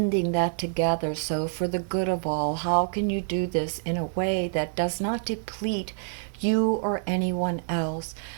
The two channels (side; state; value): left; silent; digital silence